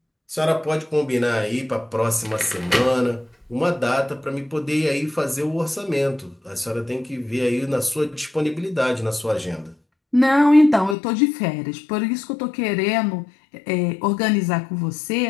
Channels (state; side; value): drops out; right; at 11.0 s